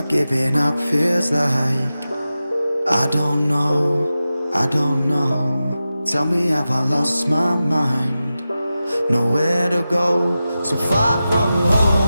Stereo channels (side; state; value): both; inverted; correlation -0.93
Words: giving up feels like? I don't know, I don't know. Tell me, have I lost my mind? Nowhere to go, so far from